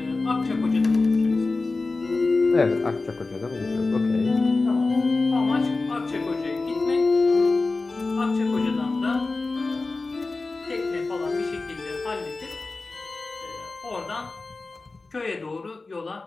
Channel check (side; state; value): right; quieter; 3.6 dB